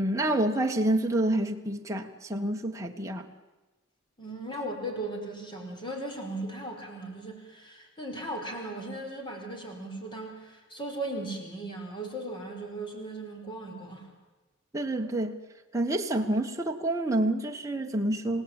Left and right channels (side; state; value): both; normal; correlation 0.59